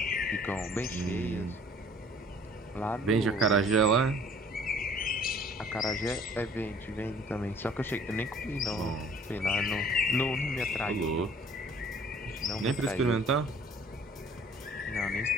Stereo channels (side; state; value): both; normal; correlation 0.53